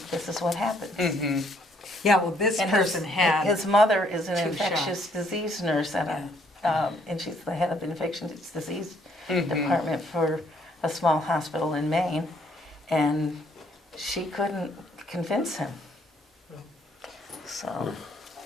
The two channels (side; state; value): both; normal; correlation 0.67